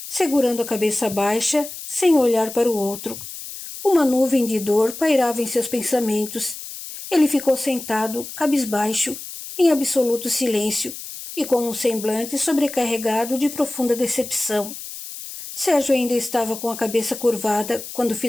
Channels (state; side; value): noise; left; hiss, 11 dB below the sound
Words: segurando a cabeça baixa, sem olhar para o outro. Uma nuvem de dor pairava em seus pensamentos. Ele ficou sentado, cabisbaixo, em absoluto silêncio, e com um semblante sobrecarregado de profunda decepção. Sérgio ainda estava com a cabeça curvada quando